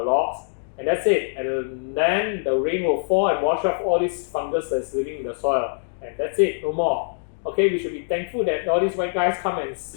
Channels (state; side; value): silent; right; digital silence